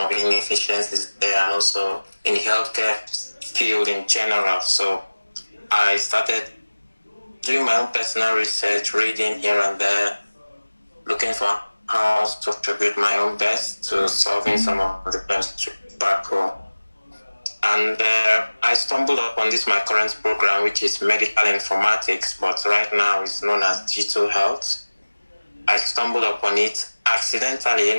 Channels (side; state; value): both; inverted; correlation -1.00